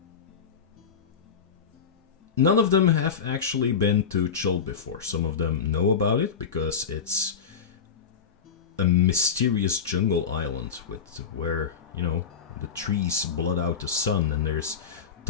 None of them have actually been to Chult before. Some of them know about it because it's a mysterious jungle island where, you know, the trees blot out the sun, and there's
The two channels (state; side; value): quieter; right; 6.7 dB